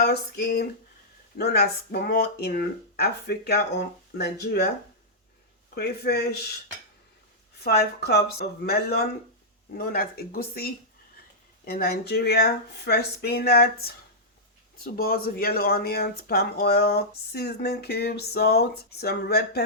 skin, known as momo in Africa or Nigeria, crayfish, 5 cups of melon, known as egusi in Nigeria, fresh spinach, 2 balls of yellow onions, palm oil, seasoning cubes, salt, some red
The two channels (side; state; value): both; normal; correlation -0.11